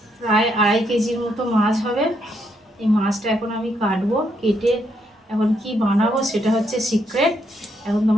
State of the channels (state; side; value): normal; both; correlation 0.75